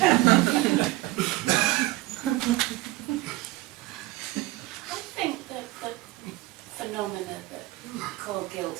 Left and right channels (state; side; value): quieter; left; 19.0 dB